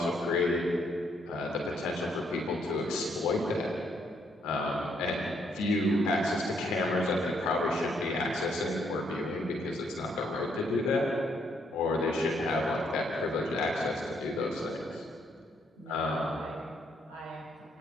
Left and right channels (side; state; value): both; normal; correlation 0.72